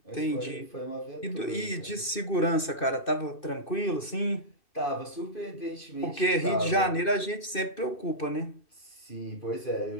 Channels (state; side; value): late; right; 2.6 ms